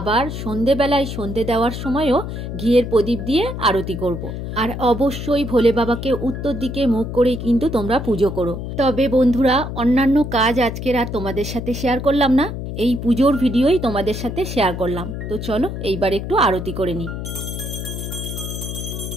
সন্ধেবেলায় সন্ধে দেওয়ার সময়ও ঘিয়ের প্রদীপ দিয়ে আরতি করব। আর অবশ্যই ভোলে বাবাকে উত্তর দিকে মুখ করেই কিন্তু তোমরা পুজো করো। তবে বন্ধুরা, অন্যান্য কাজ আজকের আর তোমাদের সাথে শেয়ার করলাম না, এই পুজোর ভিডিওই তোমাদের সাথে শেয়ার করলাম। তো চলো এইবার একটু আরতি করে নিই।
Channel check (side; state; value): left; noise; hum, 6 dB below the sound